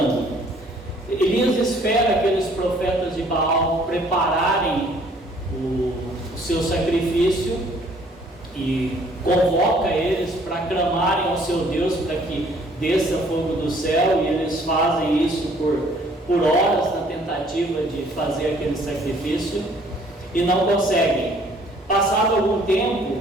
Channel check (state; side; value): normal; both; correlation 0.59